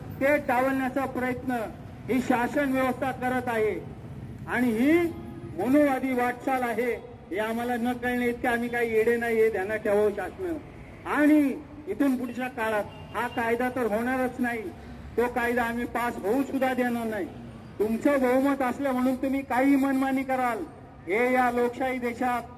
ते डावलण्याचा प्रयत्न ही शासन व्यवस्था करत आहे. आणि ही मनोवादी वाटचाल आहे हे आम्हाला न कळणे इतके आम्ही काही येडे नाही हे ध्यानात ठेवावं शासन. आणि इथून पुढच्या काळात हा कायदा तर होणारच नाही, तो कायदा आम्ही पास होऊ सुद्धा देणार नाही. तुमचं बहुमत असलं म्हणून तुम्ही काही मनमानी कराल हे या लोकशाही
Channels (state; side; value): identical; both; correlation 1.00